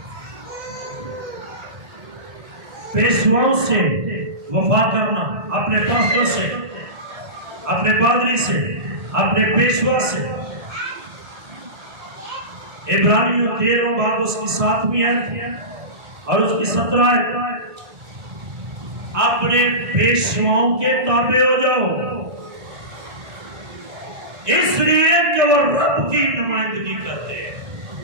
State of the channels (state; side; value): late; left; 1.6 ms